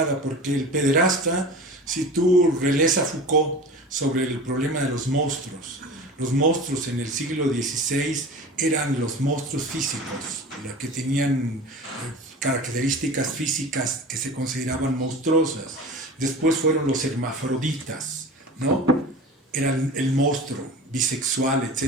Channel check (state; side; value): normal; both; correlation 0.35